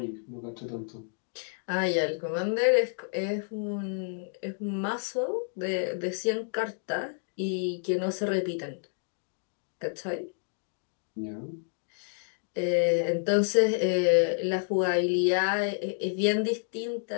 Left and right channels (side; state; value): right; silent; digital silence